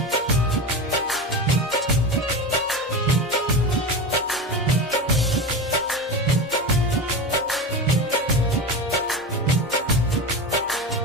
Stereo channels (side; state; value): both; normal; correlation 0.24